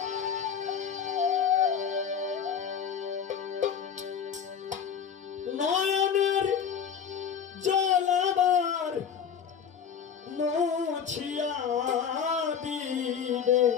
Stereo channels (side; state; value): right; quieter; 7.4 dB